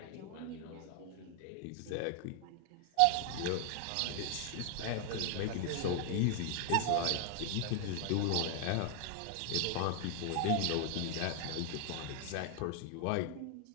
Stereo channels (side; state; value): both; different; correlation 0.00